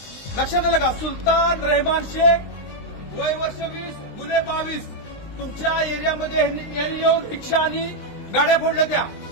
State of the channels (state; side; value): late; right; 20 ms